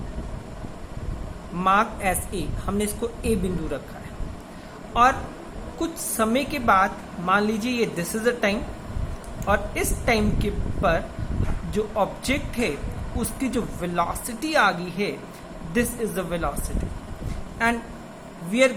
mark S A, हमने इसको ए बिंदु रखा है। और कुछ समय के बाद मान लीजिए ये दिस इज द टाइम, और इस टाइम के पर जो ऑब्जेक्ट है उसकी जो वेलोसिटी आ गई है, this is the velocity and we are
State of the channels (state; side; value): identical; both; correlation 1.00